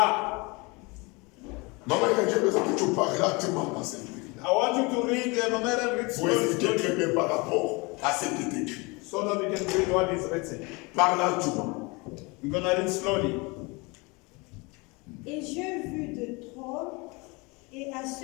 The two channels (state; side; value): quieter; right; 27.1 dB